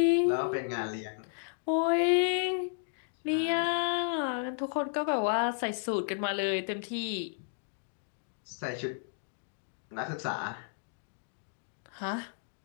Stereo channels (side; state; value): right; silent; digital silence